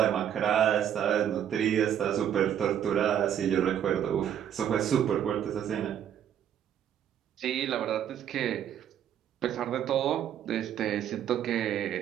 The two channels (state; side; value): quieter; left; 9.7 dB